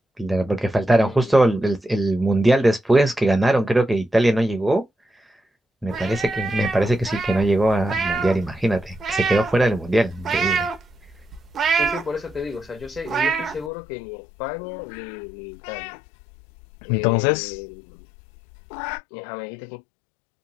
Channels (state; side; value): drops out; right; at 13.7 s